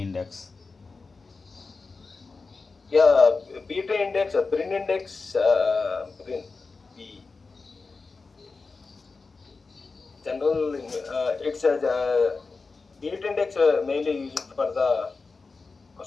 Yeah, beta index, Brin index, Brin, B general. It's a beta index mainly used for the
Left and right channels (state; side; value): quieter; right; 4.2 dB